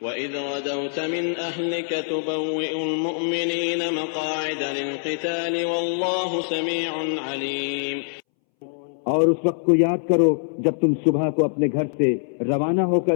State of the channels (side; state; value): right; silent; 63 dB below the other